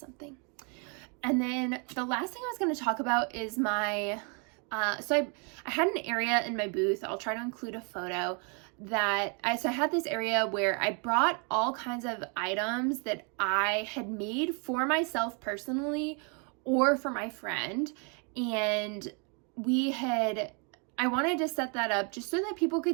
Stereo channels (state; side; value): quieter; left; 36.2 dB